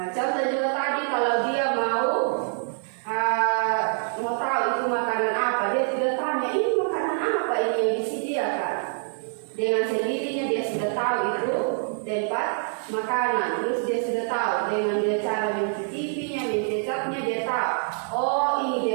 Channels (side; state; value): left; silent; 61 dB below the other